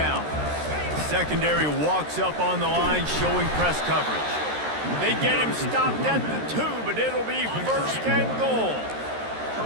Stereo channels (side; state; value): left; late; 13 ms